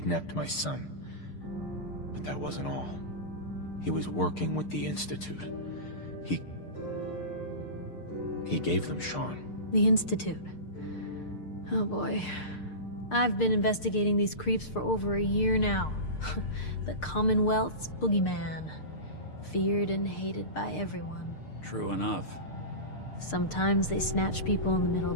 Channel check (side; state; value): right; late; 6.6 ms